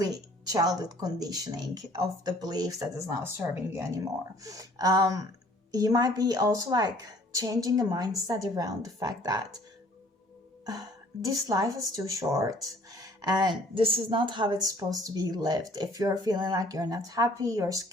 childhood conditioning of the beliefs that is not serving you anymore. You might be also like changing the mindset around the fact that this life is too short, And this is not how it's supposed to be lived. If you're feeling like you're not happy, your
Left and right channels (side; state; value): both; normal; correlation 0.56